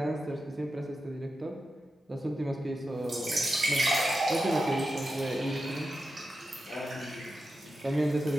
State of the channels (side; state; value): both; normal; correlation 0.90